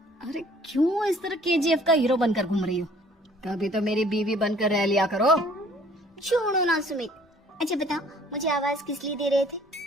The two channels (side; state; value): both; normal; correlation 0.56